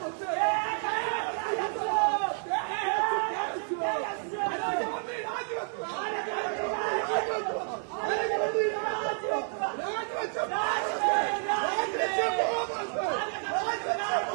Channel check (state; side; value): silent; left; 58 dB below the other